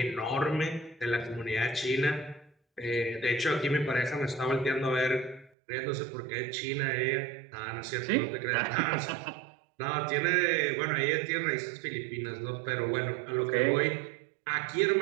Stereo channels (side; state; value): left; drops out; at 5.5 s